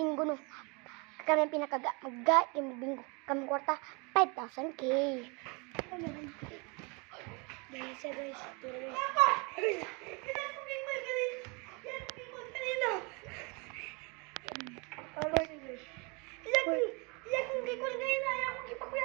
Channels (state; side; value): quieter; left; 30.8 dB